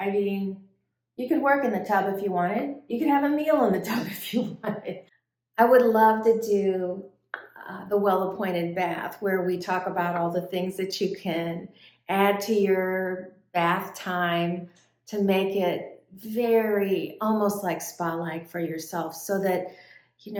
mean, you could work in the tub if you wanted. You could have a meal in the tub if you wanted. I would love to do the well-appointed bath, where we talk about all the things that you can add to your bath time to make it very almost like spa-like for yourself, so that, you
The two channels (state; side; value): identical; both; correlation 1.00